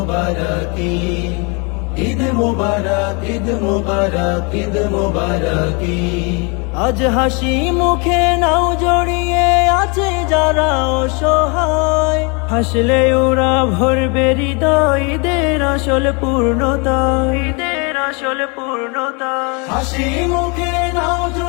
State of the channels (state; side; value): quieter; right; 32.2 dB